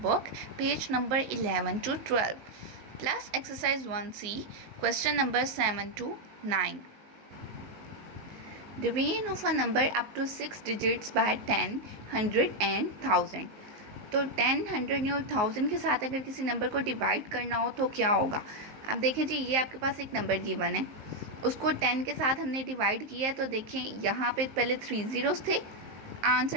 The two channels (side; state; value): left; late; 19 ms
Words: book, page number 11 to 12. Plus exercise 1C, question number 7 to 9. Division of a number up to 6 digits by 10, 100 and 1000. तो 10, 100 और 1000 के साथ अगर किसी नंबर को डिवाइड करना हो तो क्या होगा। अब देखें जी, ये आपके पास एक नंबर गिवन है, उसको 10 के साथ हमने डिवाइड किया है। तो देखें यहाँ पे पहले 3 ज़ीरोज़ थे,